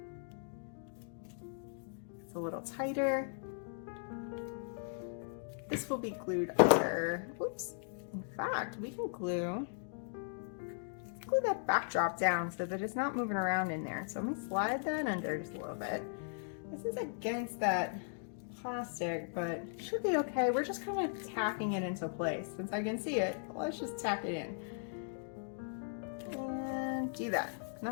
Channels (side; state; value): right; silent; digital silence